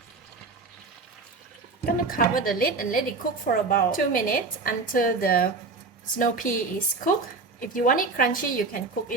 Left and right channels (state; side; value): quieter; left; 4.1 dB